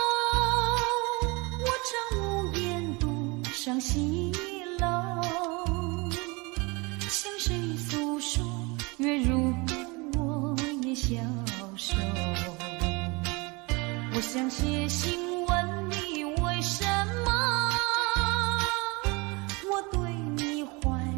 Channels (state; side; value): quieter; left; 27.1 dB